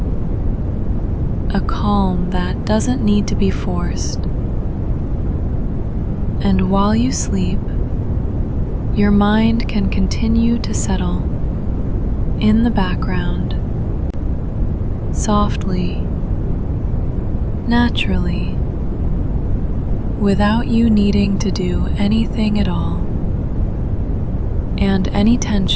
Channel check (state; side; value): identical; both; correlation 1.00